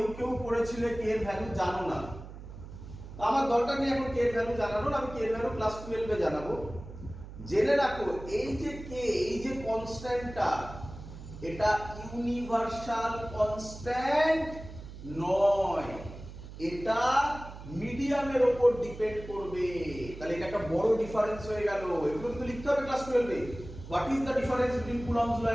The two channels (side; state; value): right; noise; hum, 13 dB below the sound